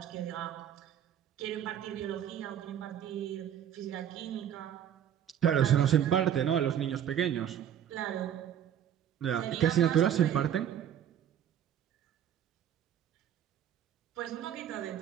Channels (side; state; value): left; quieter; 9.8 dB